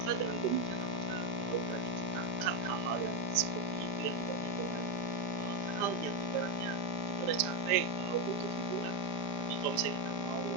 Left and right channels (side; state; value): left; late; 5.1 ms